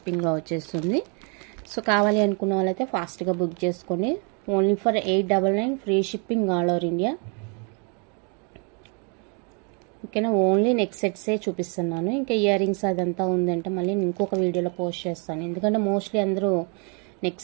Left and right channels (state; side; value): quieter; left; 36.5 dB